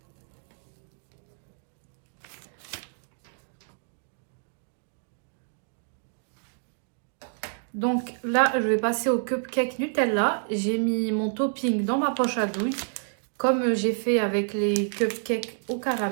Donc là, je vais passer au cupcake Nutella. J'ai mis mon topping dans ma poche à douille, comme j'ai fait avec les cupcakes au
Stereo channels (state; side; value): silent; left; digital silence